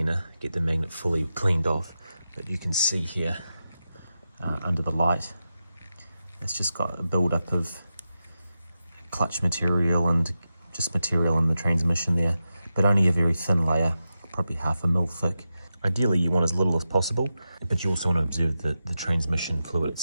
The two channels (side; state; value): both; inverted; correlation -0.90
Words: get the magnet fully cleaned off. But you can see here under the light, it's just got a build-up of clutch material and just material in the transmission there, but only a very thin layer, probably 1/2 mil thick. Ideally you want as little as possible, but you also want to observe the transmission fluid